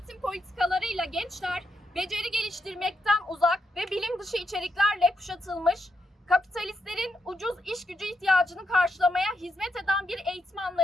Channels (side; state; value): both; normal; correlation 0.82